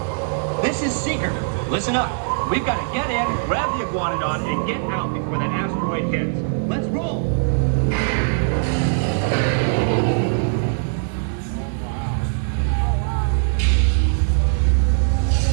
This is Seeker. Listen up. We've got to get in, grab the iguanodon, and get out before that asteroid hits. Let's roll!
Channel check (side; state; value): left; silent; digital silence